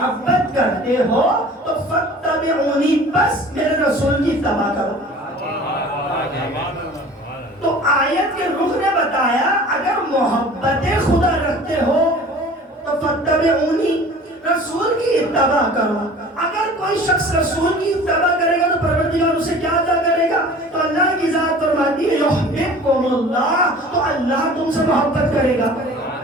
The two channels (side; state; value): both; normal; correlation 0.44